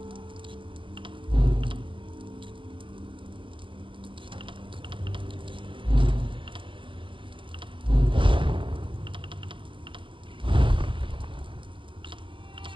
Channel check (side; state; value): left; late; 0.25 ms